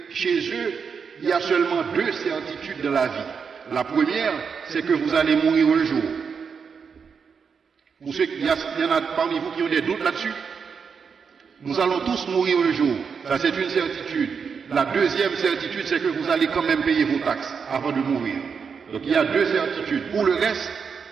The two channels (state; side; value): quieter; left; 6.1 dB